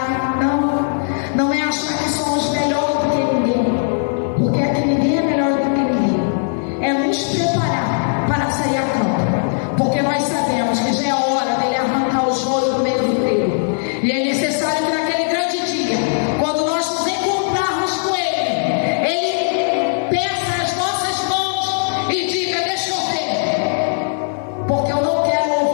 não é achar que somos melhores do que ninguém, porque aqui ninguém é melhor do que ninguém. É nos preparar para sair a campo, porque nós sabemos que já é hora dele arrancar o joio do meio do trigo, e é necessário que naquele grande dia, quando nós nos encontrarmos com ele peça as nossas mãos e diga: deixa eu ver, porque eu não quero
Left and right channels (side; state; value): right; silent; digital silence